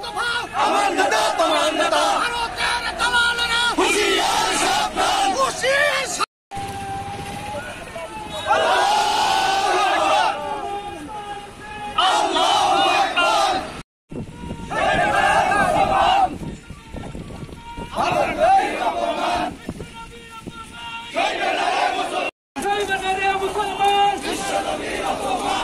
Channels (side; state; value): both; identical; correlation 1.00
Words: আমার নেতা তোমার নেতা ভারতের দালালেরা হুঁশিয়ার সাবধান হুঁশিয়ার